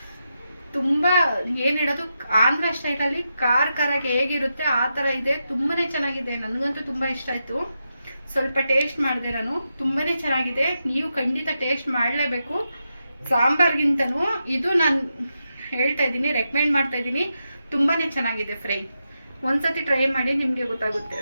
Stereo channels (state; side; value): inverted; both; correlation -0.87